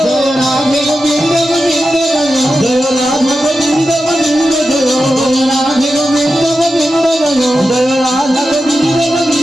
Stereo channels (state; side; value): normal; both; correlation 0.91